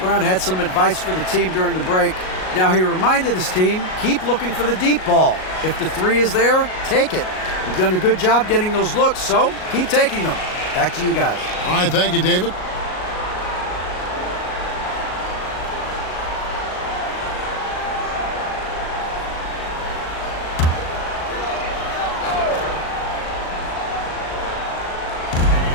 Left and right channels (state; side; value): late; right; 38 ms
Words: had some advice for the team during the break. Now he reminded his team, keep looking for the deep ball. If the 3 is there, take it. You've done a good job getting those looks, so keep taking them. Back to you guys. All right, thank you, David.